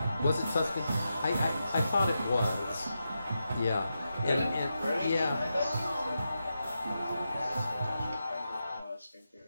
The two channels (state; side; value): inverted; both; correlation -0.88